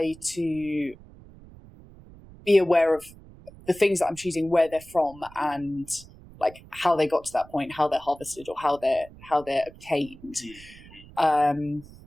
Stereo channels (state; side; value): noise; right; rumble, 20 dB below the sound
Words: to be aware of the things that I'm choosing, where they're from, and like how they got to that point, how they're harvested, or how they're obtained.